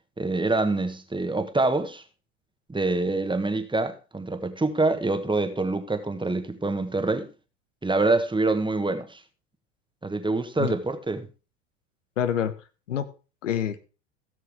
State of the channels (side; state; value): both; normal; correlation 0.65